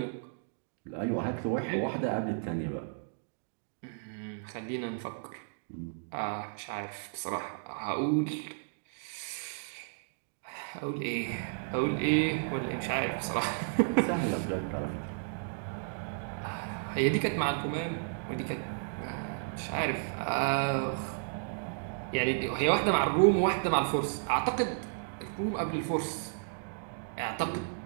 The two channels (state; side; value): silent; left; digital silence